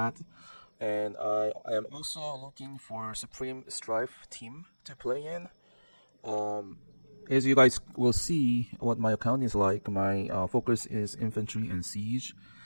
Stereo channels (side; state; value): both; inverted; correlation -1.00